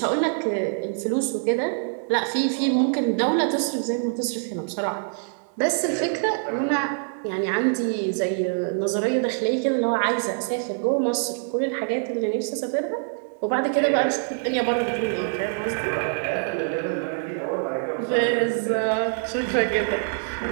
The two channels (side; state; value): left; silent; digital silence